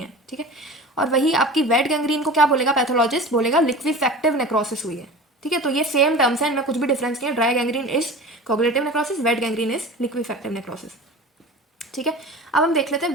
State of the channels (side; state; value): both; normal; correlation 0.35